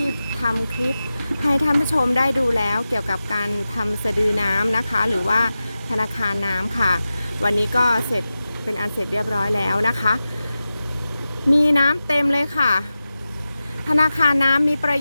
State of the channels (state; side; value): inverted; both; correlation -0.94